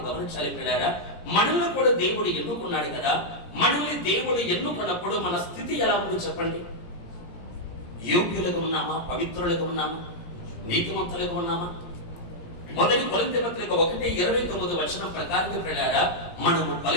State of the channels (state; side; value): late; right; 17 ms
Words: గమనించాలి పిల్లారా, మనల్ని కూడా దేవుడు ఎన్నుకున్నాడు కదా. మనల్ని దేవుడు ఎన్నుకున్నప్పుడు మన స్థితి ఎలా ఉందో చెప్పండి. యోగ్యులుగా ఉన్నామా? పవిత్రులుగా ఉన్నామా? నీతిమంతులుగా ఉన్నామా? మొదటి కొరింథీ పత్రిక 1:29 ప్రకారం ప్రియులారా, మనము